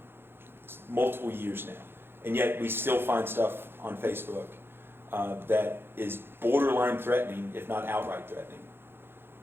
It's multiple years now. And yet we still find stuff on Facebook that is borderline threatening, if not outright threatening.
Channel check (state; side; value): late; left; 0.11 ms